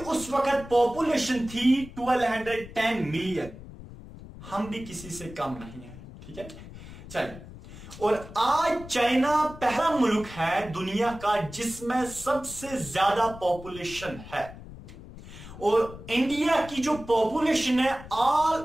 वक्त पॉपुलेशन थी 1210 मिलियन। हम भी किसी से कम नहीं है, ठीक है। चलिए, और आज चाइना पहला मुल्क है दुनिया का जिसमें सबसे ज्यादा पॉपुलेशन है, और इंडिया की जो पॉपुलेशन है ऑल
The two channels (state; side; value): noise; left; rumble, 15 dB below the sound